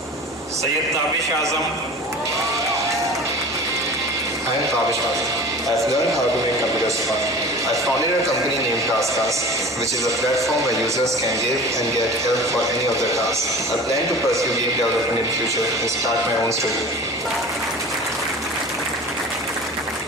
Sayyid Tabish Azam. I am Tabish Azam. I've learned how to make computer Pushpa. I founded a company named TaskUs, which is a platform where users can give and get help for any of their tasks. I plan to pursue game development in the future and start my own studio.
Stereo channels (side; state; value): both; normal; correlation 0.39